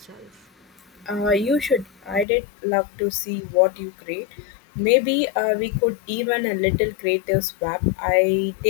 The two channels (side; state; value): right; drops out; at 2.2 s